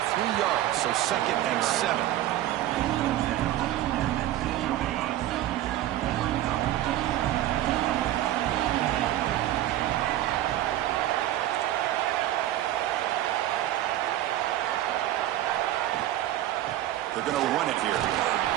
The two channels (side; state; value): left; quieter; 13.8 dB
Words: 3 yards, so 2nd and 7. They're going to run it here.